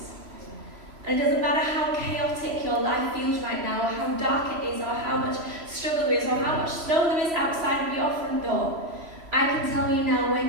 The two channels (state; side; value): late; left; 3.0 ms